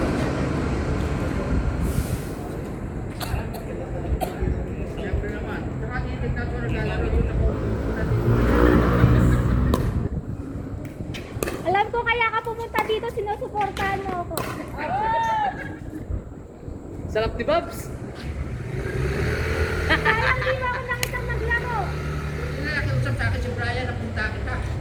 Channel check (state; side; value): identical; both; correlation 1.00